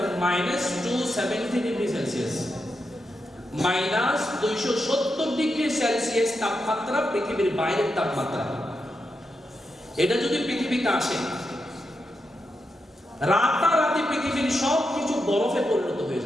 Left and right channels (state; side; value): normal; both; correlation 0.86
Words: -270 ডিগ্রি সেলসিয়াস। -270 ডিগ্রি সেলসিয়াস তাপমাত্রা পৃথিবীর বাইরের তাপমাত্রা। এটা যদি পৃথিবীতে আসে, রাতারাতি পৃথিবীর সব কিছু বরফে পরিণত হয়ে